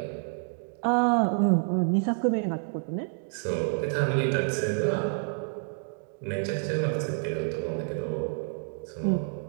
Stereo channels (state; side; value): silent; left; 59 dB below the other